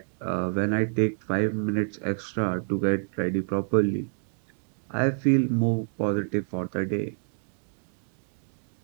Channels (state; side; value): silent; left; digital silence